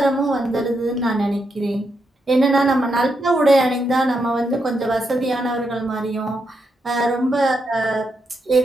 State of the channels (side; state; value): both; normal; correlation 0.82